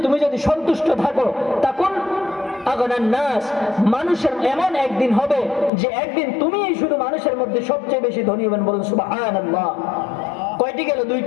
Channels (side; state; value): right; drops out; at 5.7 s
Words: তুমি যদি সন্তুষ্ট থাকো, তাকুন আগনান নাস, মানুষের এমন একদিন হবে যে একদিন তুমি শুধু মানুষের মধ্যে সবচেয়ে বেশি ধনী হবেন। বলুন সুবহানাল্লাহ। কয়টি গেল?